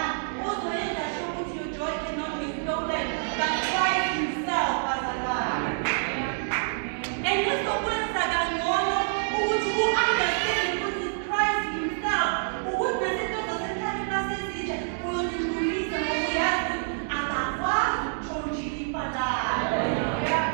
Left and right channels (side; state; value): left; silent; 60 dB below the other